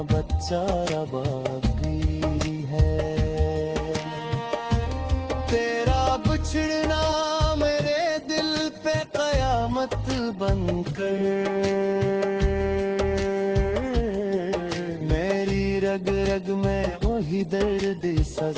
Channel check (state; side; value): identical; both; correlation 1.00